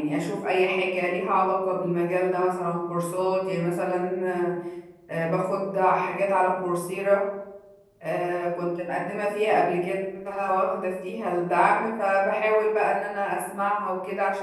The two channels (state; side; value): identical; both; correlation 1.00